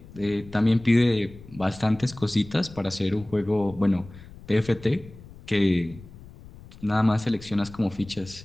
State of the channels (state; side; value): noise; left; rumble, 19 dB below the sound